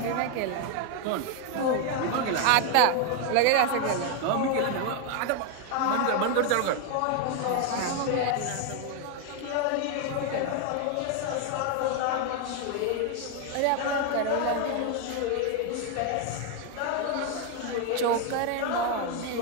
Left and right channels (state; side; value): different; both; correlation 0.01